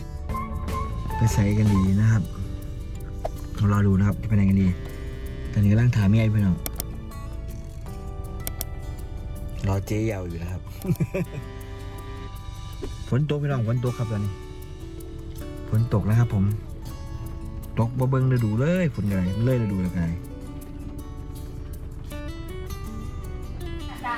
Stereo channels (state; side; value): identical; both; correlation 1.00